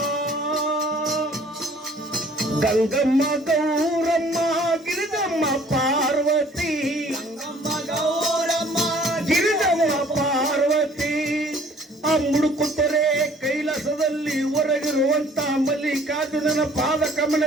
ಗಂಗಮ್ಮ ಗೌರಮ್ಮ ಗಿರಿಜಮ್ಮ ಪಾರ್ವತಿ ಗಿರಿಜಮ್ಮ ಪಾರ್ವತಿ ಆ ಮುಡುಕುತ್ತರೆ ಕೈಲಾಸದಲ್ಲಿ ಹೊರಗಿರುವಂತ ಮಲ್ಲಿಕಾರ್ಜುನನ ಪಾದ ಕಮಲ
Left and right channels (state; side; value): normal; both; correlation 0.55